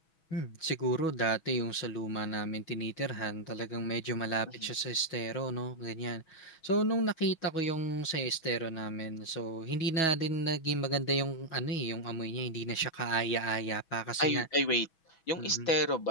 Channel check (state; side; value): late; right; 6.2 ms